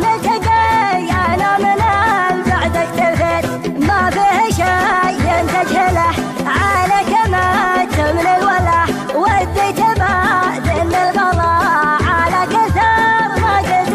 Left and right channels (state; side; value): identical; both; correlation 1.00